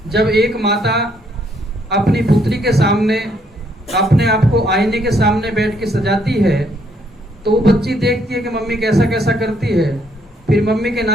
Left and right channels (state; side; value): normal; both; correlation 0.70